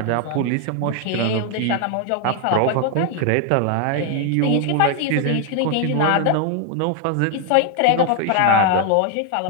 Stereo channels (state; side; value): different; both; correlation 0.00